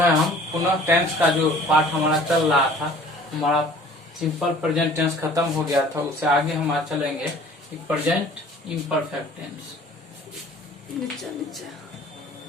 हम पुनः टेंस का जो पाठ हमारा चल रहा था, हमारा सिंपल प्रेजेंट टेंस खत्म हो गया था, उससे आगे हम आज चलेंगे present imperfect tense.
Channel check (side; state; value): both; normal; correlation 0.50